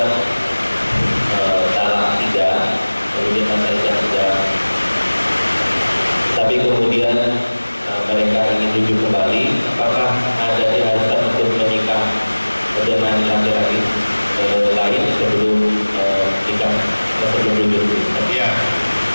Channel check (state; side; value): inverted; both; correlation -1.00